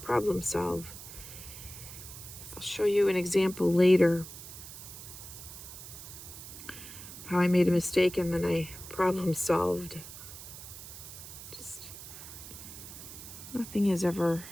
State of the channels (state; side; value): noise; right; hiss, 13 dB below the sound